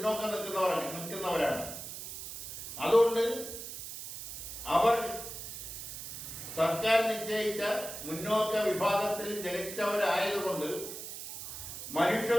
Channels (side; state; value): right; noise; hiss, 9 dB below the sound